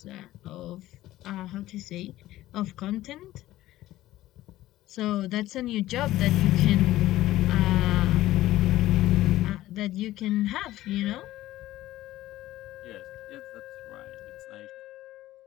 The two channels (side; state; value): right; quieter; 15.4 dB